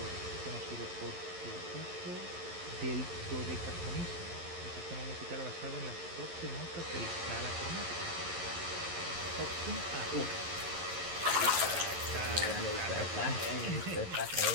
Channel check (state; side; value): late; left; 11 ms